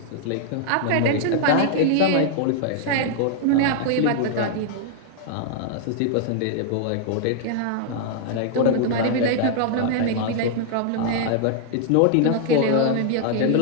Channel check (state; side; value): different; both; correlation -0.01